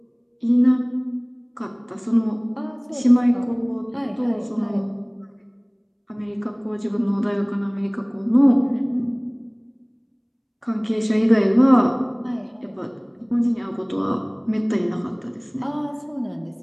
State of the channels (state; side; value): identical; both; correlation 1.00